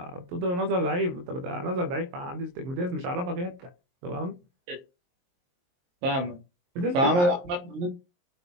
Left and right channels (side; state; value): left; late; 23 ms